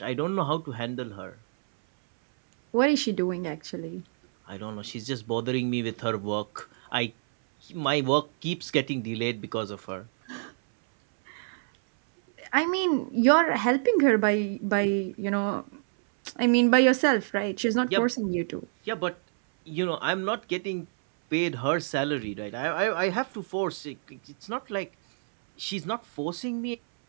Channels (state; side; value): silent; left; 60 dB below the other